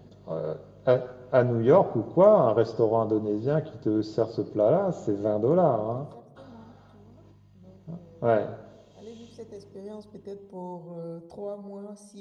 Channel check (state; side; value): identical; both; correlation 1.00